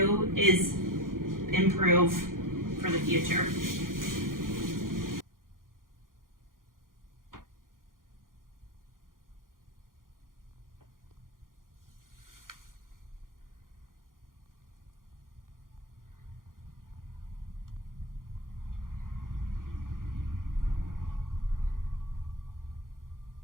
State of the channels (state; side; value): late; left; 0.90 ms